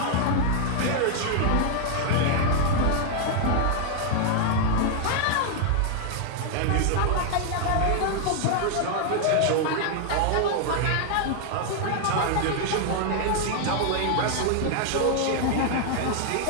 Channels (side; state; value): both; different; correlation 0.00